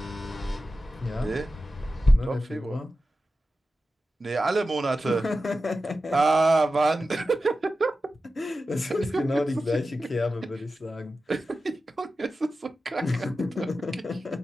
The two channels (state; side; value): normal; both; correlation 0.93